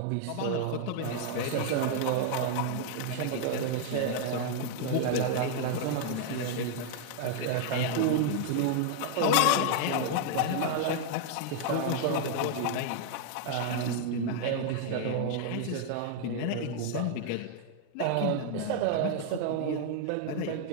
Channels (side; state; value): both; different; correlation 0.00